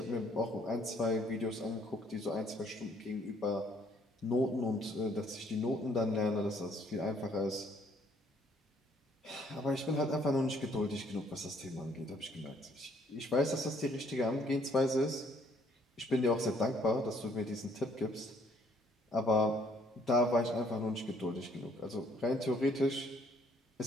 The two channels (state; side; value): normal; both; correlation 0.64